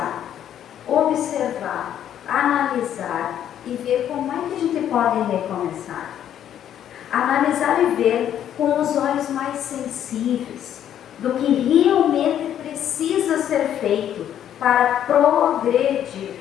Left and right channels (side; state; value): right; quieter; 10.3 dB